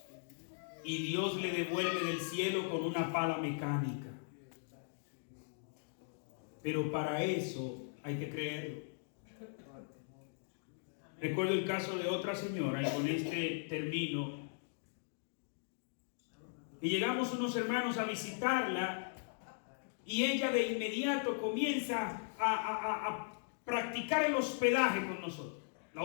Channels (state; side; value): silent; right; digital silence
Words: y Dios le devuelve del cielo con una pala mecánica. Pero para eso hay que creerlo. Recuerdo el caso de otra señora, y con este termino. Y llegamos unos hermanos a visitarla, y ella de inmediato comienza a practicar el hospedaje con nosotros, la